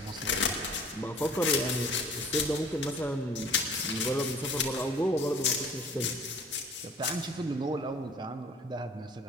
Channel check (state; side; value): normal; both; correlation 0.50